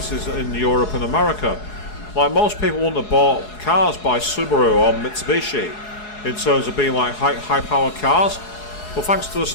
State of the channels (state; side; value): late; right; 4.7 ms